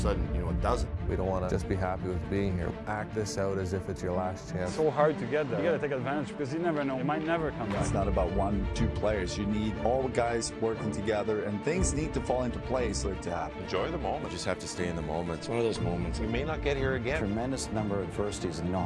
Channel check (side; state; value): both; identical; correlation 1.00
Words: it doesn't. We don't want to just be happy with being here. Act this out as if it's your last chance. It's so hard to get there. You got to take advantage because you never know. It might never come back. It's not about 1-2 players. You need all the guys working together, and things need to fall into place for it to happen. Enjoy the moment. You just have to stay in the moment. It's one of those moments. We may not get here again. Tremendous number of adversities, and you know